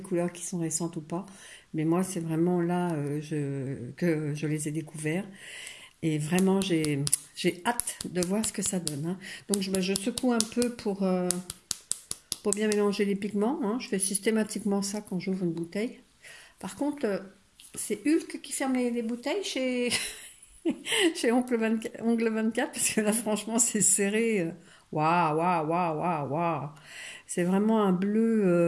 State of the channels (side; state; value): both; identical; correlation 1.00